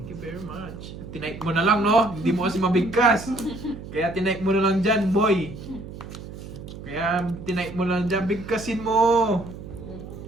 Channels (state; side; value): noise; right; hum, 12 dB below the sound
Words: you very much. Tinipe mo na lang, no? Hindi mo kasi mabigkas. Kaya tinipe mo na lang dyan, boy. Kaya tinipe mo lang dyan, bigkasin mo.